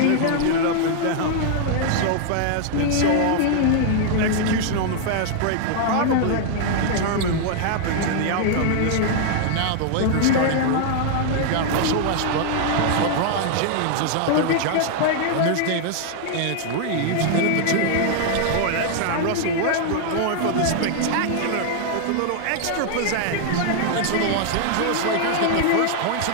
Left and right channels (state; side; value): different; both; correlation 0.00